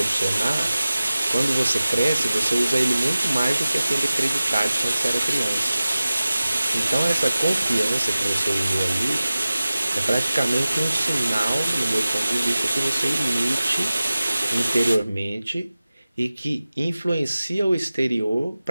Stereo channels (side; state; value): both; inverted; correlation -0.96